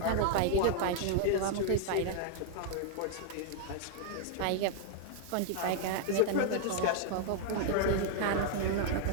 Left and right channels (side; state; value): both; different; correlation -0.01